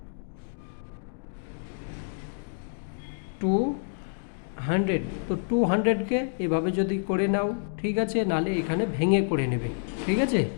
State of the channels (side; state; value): right; silent; digital silence